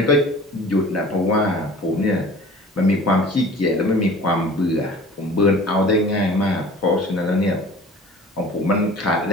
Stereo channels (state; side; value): normal; both; correlation 0.44